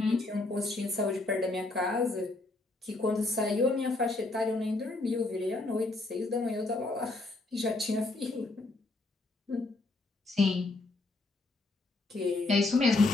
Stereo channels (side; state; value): right; quieter; 3.1 dB